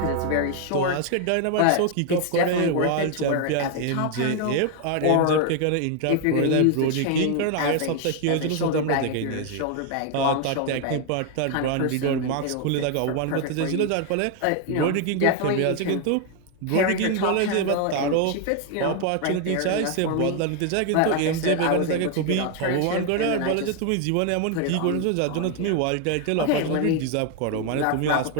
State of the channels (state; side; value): different; both; correlation 0.01